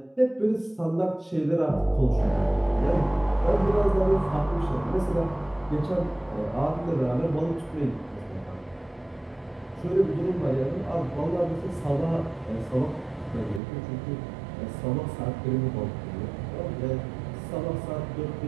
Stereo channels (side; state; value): left; drops out; at 13.6 s